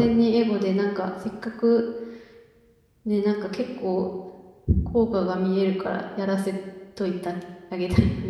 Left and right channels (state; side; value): identical; both; correlation 1.00